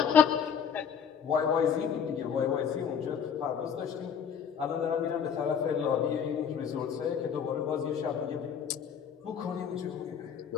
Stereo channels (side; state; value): right; quieter; 7.5 dB